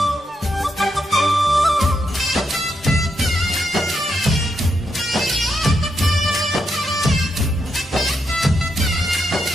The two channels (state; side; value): normal; both; correlation 0.81